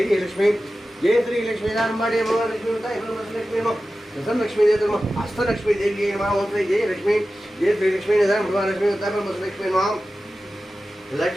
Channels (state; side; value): normal; both; correlation 0.94